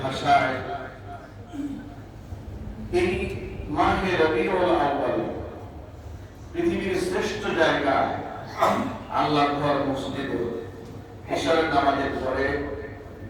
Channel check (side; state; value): both; identical; correlation 1.00